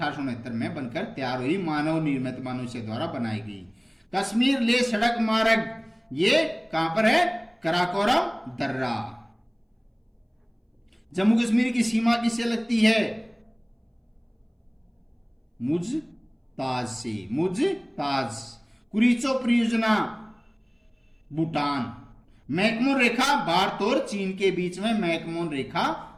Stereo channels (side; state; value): both; identical; correlation 1.00